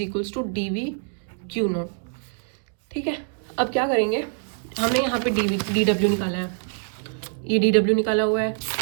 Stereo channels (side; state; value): left; silent; 60 dB below the other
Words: equals to D V Q naught, ठीक है। अब क्या करेंगे, हमने यहाँ पे डी डब्ल्यू निकाला है, ये डी डब्ल्यू निकाला हुआ है,